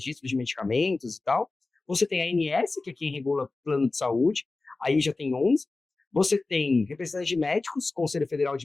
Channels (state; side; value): quieter; right; 3.5 dB